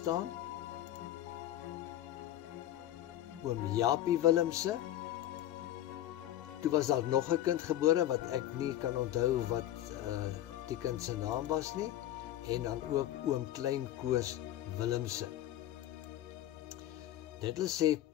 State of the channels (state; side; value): quieter; right; 13.0 dB